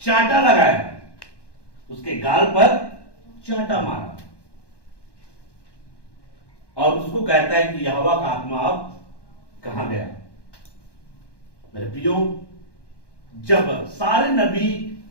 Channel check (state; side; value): late; right; 1.1 ms